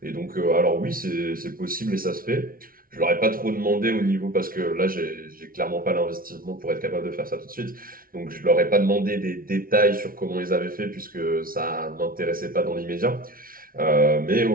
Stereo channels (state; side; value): late; left; 0.42 ms